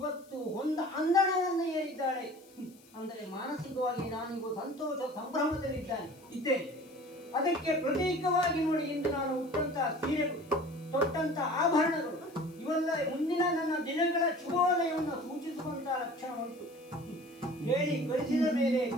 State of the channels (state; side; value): noise; left; hiss, 27 dB below the sound